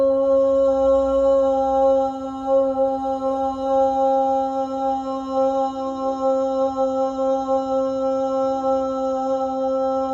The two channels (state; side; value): identical; both; correlation 1.00